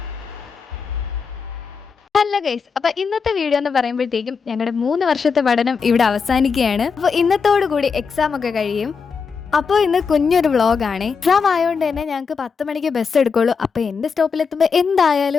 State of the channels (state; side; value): quieter; right; 5.6 dB